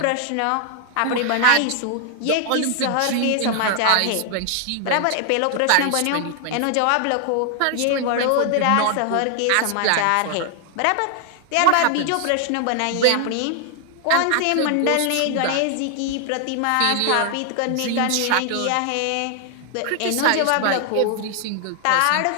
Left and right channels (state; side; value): different; both; correlation 0.00